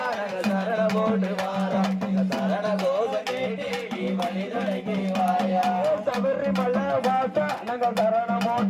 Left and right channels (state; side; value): identical; both; correlation 1.00